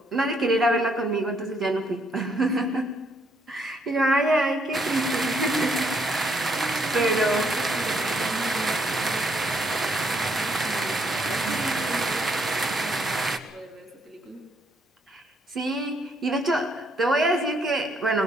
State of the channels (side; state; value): both; normal; correlation 0.71